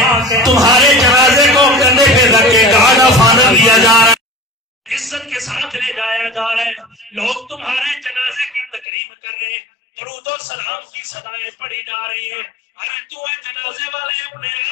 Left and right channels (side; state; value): right; drops out; at 8.8 s